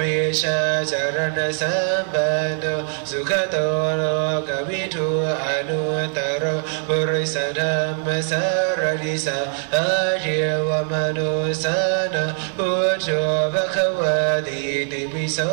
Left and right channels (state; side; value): silent; left; 64 dB below the other